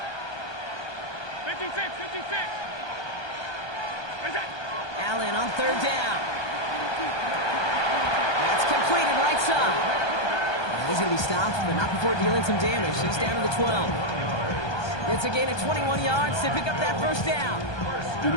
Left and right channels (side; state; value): right; late; 1.2 ms